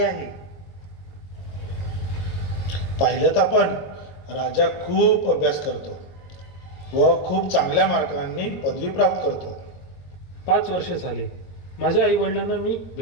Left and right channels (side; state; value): right; late; 22 ms